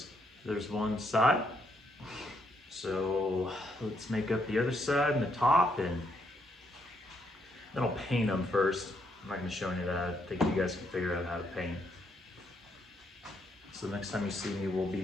There's one side. So let's make up the other side and the top, and then I'll paint them first. I'm not going to show any of that. I think you guys can figure out how to paint. So the next time you see me, we'll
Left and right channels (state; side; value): normal; both; correlation 0.74